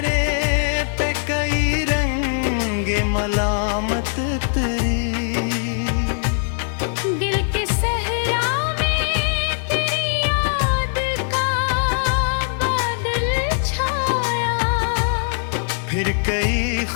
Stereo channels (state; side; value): silent; right; 61 dB below the other